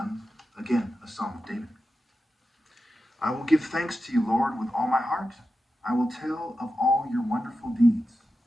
again, a psalm of David. I will give thanks to you, Lord, with all my heart. I will tell of all your wonderful deeds.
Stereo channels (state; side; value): normal; both; correlation 0.91